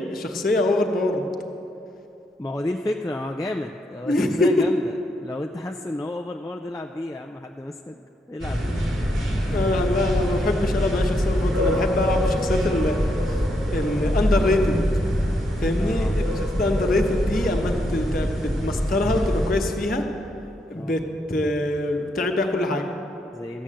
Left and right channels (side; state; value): both; normal; correlation 0.78